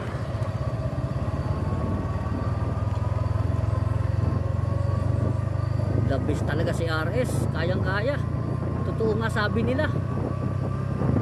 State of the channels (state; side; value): identical; both; correlation 1.00